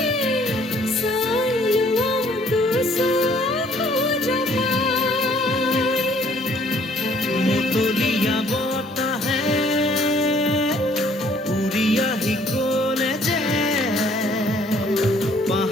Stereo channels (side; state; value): both; normal; correlation 0.60